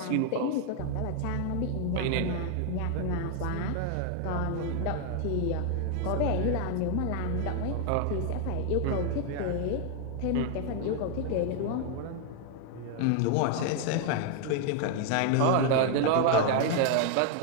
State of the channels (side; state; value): both; different; correlation 0.00